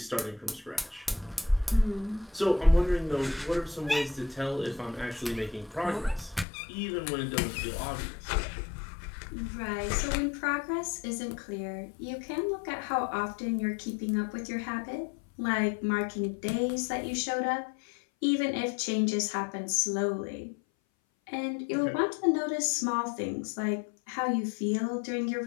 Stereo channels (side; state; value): right; drops out; at 6.5 s